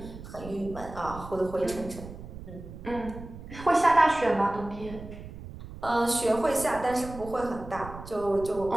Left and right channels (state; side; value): noise; right; rumble, 13 dB below the sound